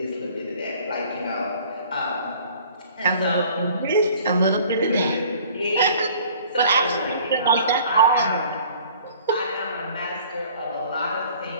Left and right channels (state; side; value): inverted; both; correlation -0.52